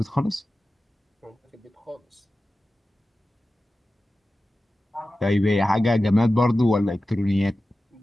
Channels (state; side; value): normal; both; correlation 0.94